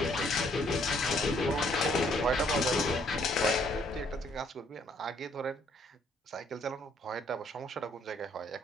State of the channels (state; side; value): normal; both; correlation 0.66